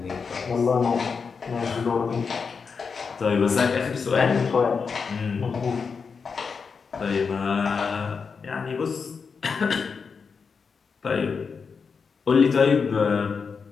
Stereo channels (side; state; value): right; quieter; 5.5 dB